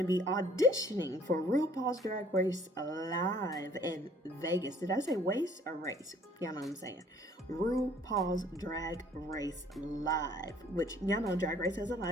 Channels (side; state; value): both; normal; correlation 0.57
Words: be auditioning for RuPaul's Drag Race Live in Vegas. Did I say waste or race? Y'all know what I'm saying. RuPaul's Drag Race Live, which y'all know Drag Race has a